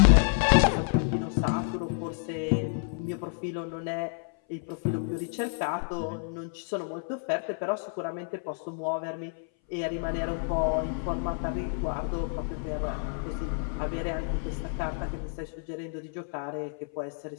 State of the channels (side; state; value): right; silent; 58 dB below the other